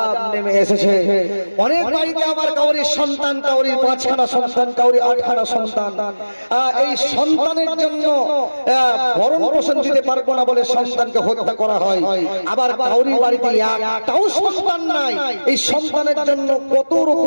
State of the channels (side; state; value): both; inverted; correlation -1.00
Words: নেমে এসেছে। অনেক বাড়িতে আবার কাউরির সন্তান, কাউরির 5খানা সন্তান, কাউরির 8খানা সন্তান, এই সন্তানের জন্য ভরণ পোষণ দিতে পারবো না বলে সন্তানকে হত্যা করা হয়। আবার কাউরির বাড়িতে একটাও সন্তান নাই, এই সন্তানের জন্য কত